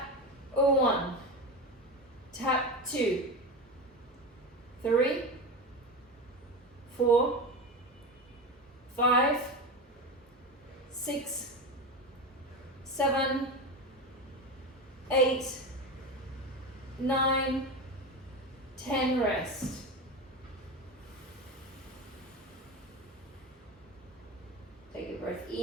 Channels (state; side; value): normal; both; correlation 0.22